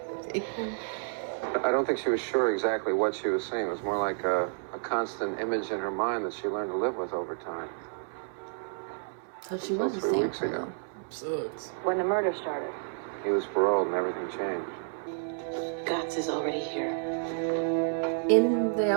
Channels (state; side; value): silent; left; 58 dB below the other